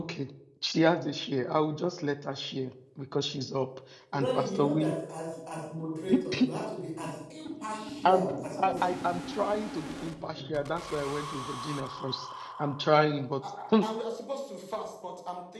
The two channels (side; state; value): both; identical; correlation 1.00